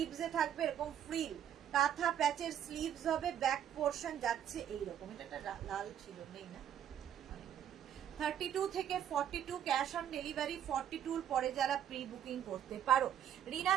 থাকবে এরকম ফ্রিল, কাঁথা প্যাচের স্লিভস হবে, ব্যাক পোর্শন যাচ্ছে এইরকম। এটা লাল ছিল, নেই না। 32 থেকে 42 ক্যাশ অন ডেলিভারি, 42 পরে যারা প্রি বুকিং করতে পারো। রিনা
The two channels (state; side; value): quieter; left; 9.7 dB